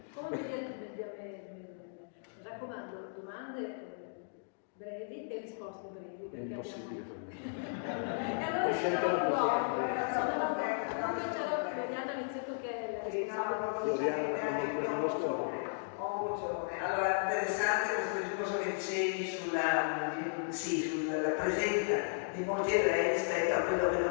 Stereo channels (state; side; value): silent; right; digital silence